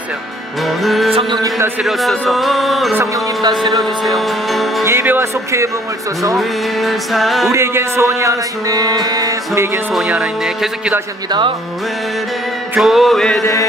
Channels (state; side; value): normal; both; correlation 0.60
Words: 성령님 다스려주소서. 성령님 다스려주세요. 예배와 속회의 부흥을 쏘서 우리에겐 소원이 하나 있네. 우리에겐 소원이 하나 있네. 계속 기도하십니다.